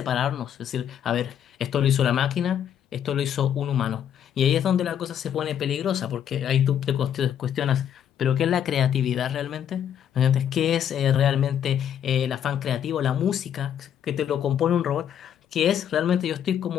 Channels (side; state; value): right; quieter; 9.4 dB